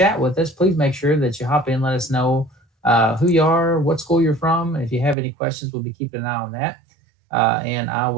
with us, please make sure that you hop in, let us know who you are, what school you're from. If you have any questions, we'll be keeping an eye on that. And I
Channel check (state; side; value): drops out; left; at 5.2 s